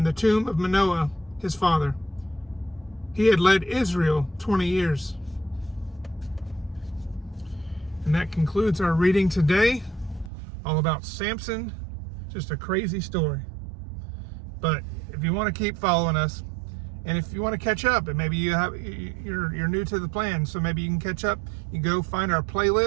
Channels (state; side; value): drops out; left; at 10.3 s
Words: the tomb of Manoah, his father. He had led Israel 20 years. And that concludes our reading today, all about Samson. Just a crazy story. But if you want to keep following us, and if you want to catch up, and maybe you're new to the plan, so maybe you can catch up, you go find our